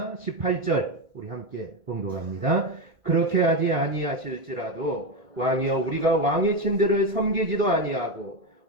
18절 우리 함께 봉독합니다. 그렇게 하지 아니하실지라도 왕이여 우리가 왕의 신들을 섬기지도 아니하고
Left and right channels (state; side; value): late; left; 1.9 ms